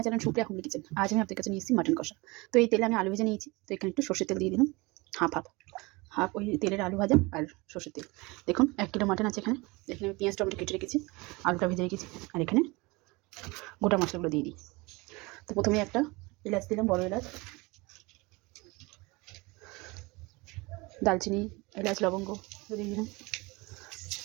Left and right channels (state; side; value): quieter; left; 24.6 dB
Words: channel Supriya homely kitchen. आज मैं आपके কাছে নিয়ে এসেছি মাটন কষা। তো এই তেলে আমি আলু ভেজে নিয়েছি। তো এখানে একটু সরষের তেল দিয়ে দিলাম, হাফ ওই তেলের আলু ভাজা আর সরষের তেল। দেখুন 1 কিলো মাটন আছে। এখানে আমি পেঁয়াজ টমেটো কেটে রেখেছি, আলুটা ভেজে রেখেছি, আর এখানে গোটা মশলাগুলো দিয়ে দিই। তো প্রথমে একটা এলাচ দিলাম, বড় এলাচ, দালচিনি, এলাচ, লবঙ্গ দিয়ে দিলাম,